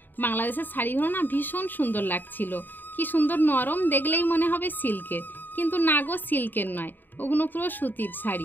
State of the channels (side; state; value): right; late; 0.091 ms